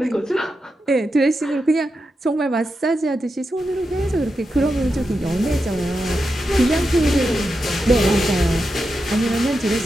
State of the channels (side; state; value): both; normal; correlation 0.88